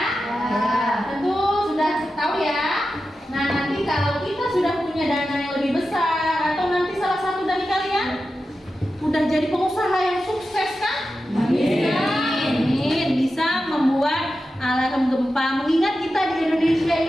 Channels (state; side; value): normal; both; correlation 0.91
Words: Tentu sudah tahu ya. Nah, nanti kalau kita sudah punya dana yang lebih besar atau nanti salah satu dari kalian udah jadi pengusaha yang sukses kan? Bisa membuat alarm gempa. Mengingat kita di Indonesia